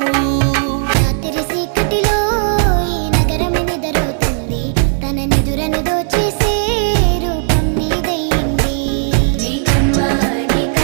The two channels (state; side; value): silent; left; 69 dB below the other